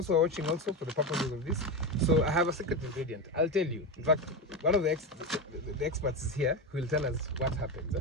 who are watching also, for the purposes of this, so I have a secret ingredient. I'll tell you. In fact, one of the experts is here who will tell us what happens.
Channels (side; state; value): both; normal; correlation 0.16